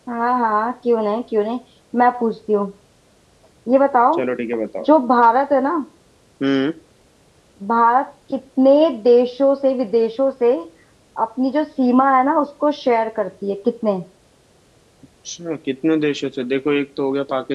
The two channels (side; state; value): both; identical; correlation 1.00